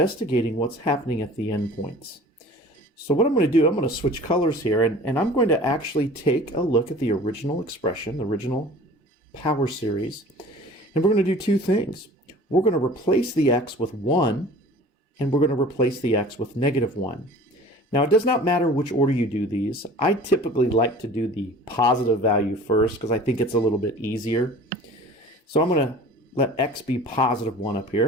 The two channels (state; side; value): normal; both; correlation 0.44